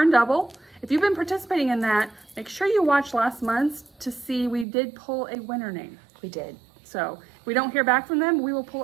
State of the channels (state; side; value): drops out; left; at 4.7 s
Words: double. If you've been participating in that, make sure you watch last month's to see we did pull a winner name. We did. So if we don't hear back from them, we will